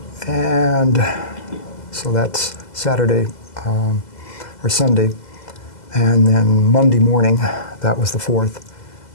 And so that's Saturday or Sunday. And then Monday morning, that was the 4th.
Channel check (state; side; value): late; right; 2.0 ms